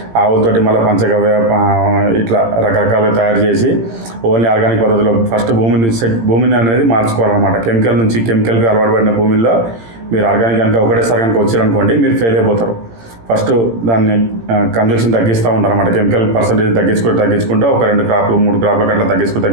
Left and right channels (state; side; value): late; left; 18 ms